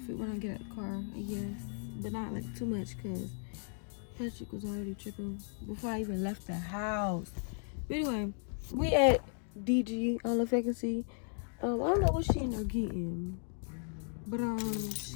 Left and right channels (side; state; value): right; silent; 54 dB below the other